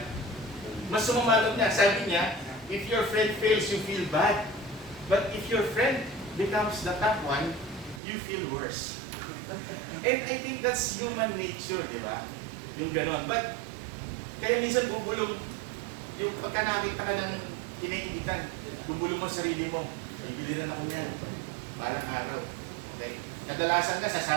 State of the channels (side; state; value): left; drops out; at 8.0 s